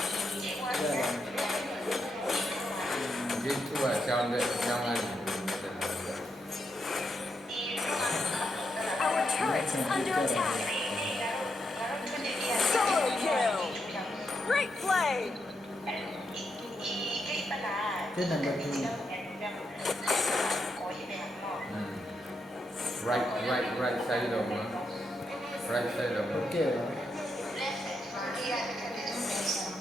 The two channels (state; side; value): normal; both; correlation 0.82